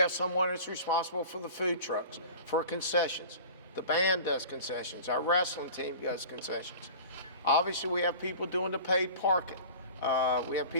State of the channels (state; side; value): inverted; both; correlation -0.39